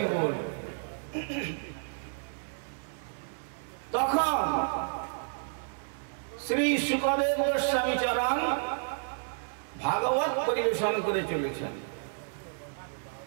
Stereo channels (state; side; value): silent; left; 57 dB below the other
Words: বল। তখন শ্রী শুকদেব গোস্বামী চরণ ভাগবত পরিবেশন করে চলেছেন।